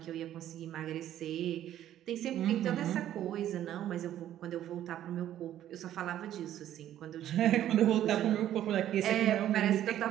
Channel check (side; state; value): left; quieter; 11.9 dB